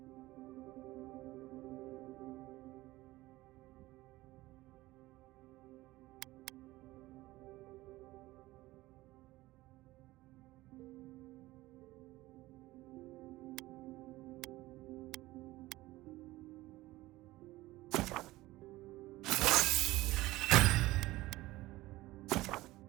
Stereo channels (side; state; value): left; quieter; 18.3 dB